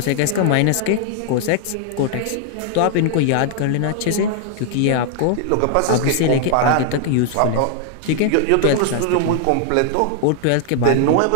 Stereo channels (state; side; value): different; both; correlation 0.00